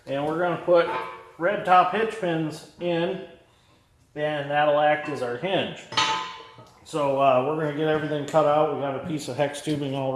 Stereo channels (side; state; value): both; identical; correlation 1.00